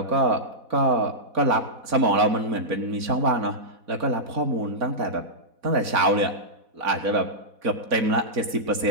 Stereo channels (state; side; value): late; left; 4.1 ms